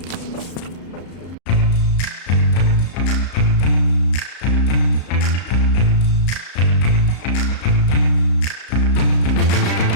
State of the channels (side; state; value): right; late; 34 ms